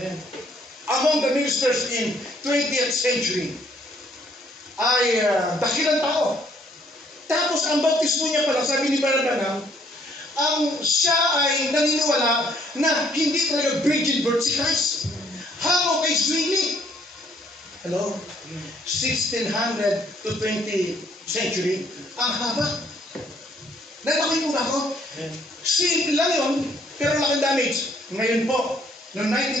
among the ministers in 20th century, ay dakilang tao. Tapos ang bautismo niya pala, sabi ni Brother Branham, siya ay naniniwala na hindi talaga virgin birth si Christ. Hango kay Zwingli. Hello? 1600 to 20th century, ang haba. Nalaking mo ba ako? Simple lang yun, pero laking damage. Ngayon po, noong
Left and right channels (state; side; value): normal; both; correlation 0.66